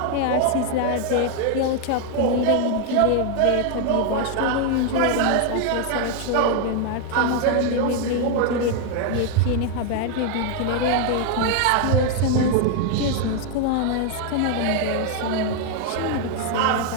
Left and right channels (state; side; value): different; both; correlation 0.00